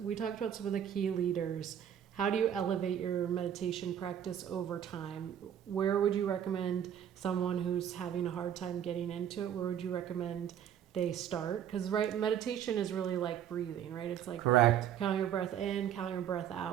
about some of the key leaders. How do you elevate your meditation practice over time? Where would you recommend someone who's having a hard time getting into it? Where would you recommend they start? Because meditation is really like breathing, right? It's like correct. Counting your breath in, counting your breath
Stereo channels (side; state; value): left; quieter; 9.5 dB